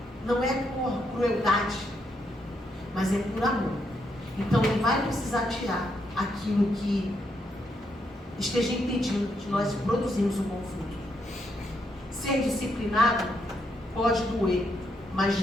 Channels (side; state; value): both; normal; correlation 0.78